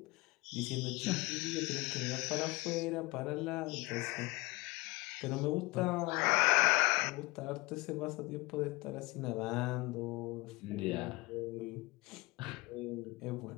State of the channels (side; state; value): right; quieter; 23.9 dB